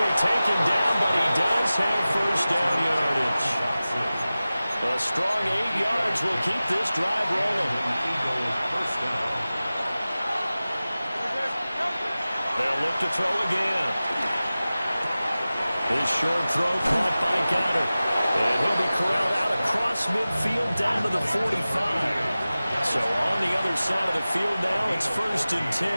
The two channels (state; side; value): inverted; both; correlation -0.96